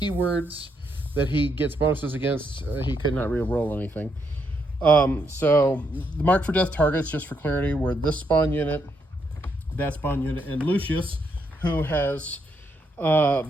that he gets bonuses against, he could not re-roll anything. So the Mark for Death targets, just for clarity, were this spawn unit, that spawn unit, and Lucius, who has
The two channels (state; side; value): normal; both; correlation 0.77